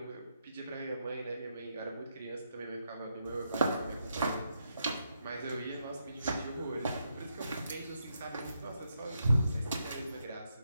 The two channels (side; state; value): both; inverted; correlation -0.81